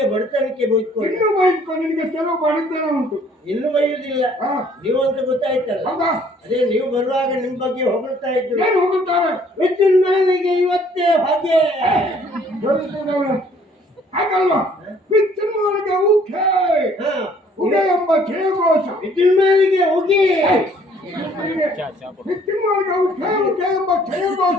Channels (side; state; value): both; normal; correlation 0.60